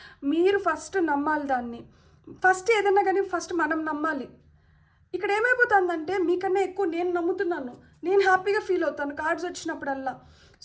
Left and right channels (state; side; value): identical; both; correlation 1.00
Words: మీరు ఫస్ట్ నమ్మాలి దాన్ని. ఫస్ట్ ఏదైనా కానీ ఫస్ట్ మనం నమ్మాలి. ఇక్కడ ఏమైపోతుందంటే మీకన్నా ఎక్కువ నేను నమ్ముతున్నాను, నేను హ్యాపీగా ఫీల్ అవుతాను కార్డ్స్ వచ్చినప్పుడల్లా.